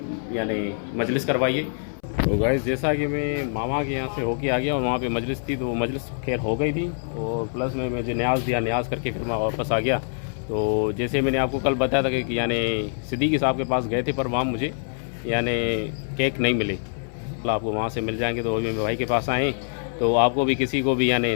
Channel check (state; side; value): silent; right; 62 dB below the other